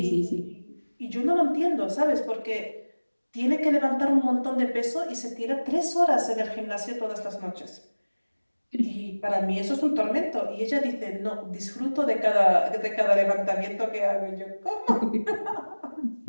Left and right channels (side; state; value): both; inverted; correlation -1.00